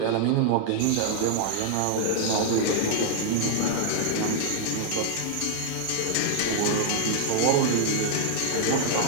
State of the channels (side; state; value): both; different; correlation 0.00